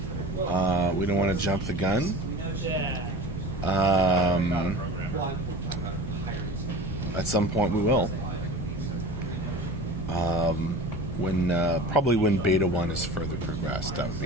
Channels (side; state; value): both; normal; correlation 0.36